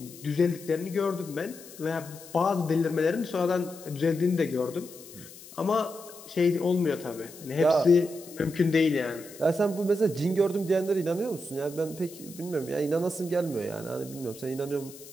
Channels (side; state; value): left; noise; hiss, 18 dB below the sound